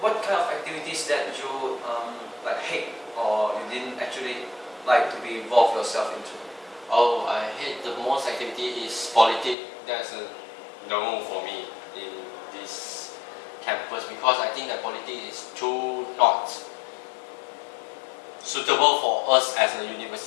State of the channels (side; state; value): right; drops out; at 9.6 s